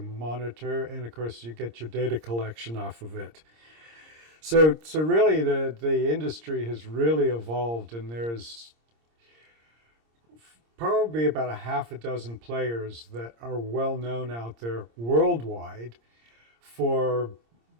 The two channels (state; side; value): late; left; 26 ms